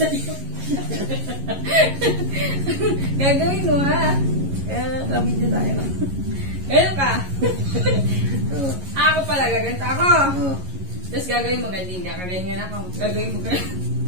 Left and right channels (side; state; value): left; late; 11 ms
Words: Gagawin mo ha. Video tayo. Ganun ka. Ako pala, gaganto ako. Tapos gagawin mo ganyan ka. Kaganyan ako. Gagawin mo ganyan.